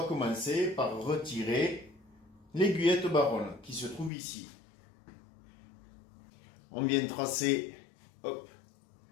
commencer par retirer l'aiguillette baronne qui se trouve ici. On vient tracer, hop,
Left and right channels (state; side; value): drops out; right; at 4.1 s